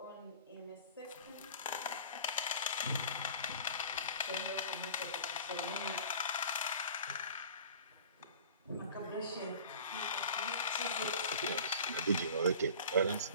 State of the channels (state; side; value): inverted; both; correlation -0.42